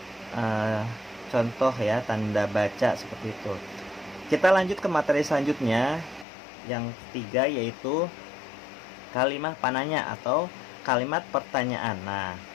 contoh ya tanda baca seperti itu. Kita lanjut ke materi selanjutnya, yang ketiga, yaitu kalimat pananya atau kalimat pertanyaan. Nah,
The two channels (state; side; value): drops out; right; at 6.2 s